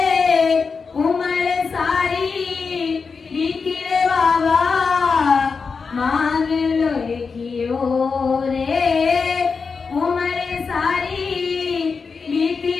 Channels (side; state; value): right; quieter; 5.1 dB